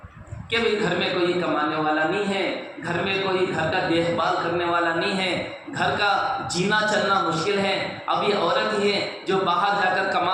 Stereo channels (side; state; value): both; identical; correlation 1.00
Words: کہ بھئی گھر میں کوئی کمانے والا نہیں ہے، گھر میں کوئی گھر کا دیکھ بھال کرنے والا نہیں ہے، گھر کا جینا چلنا مشکل ہے، اب یہ عورت ہی ہے جو باہر جا کر